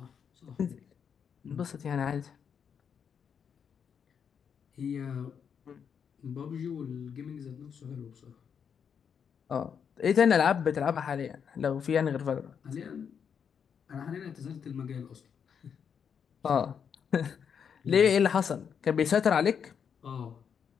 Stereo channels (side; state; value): right; quieter; 7.2 dB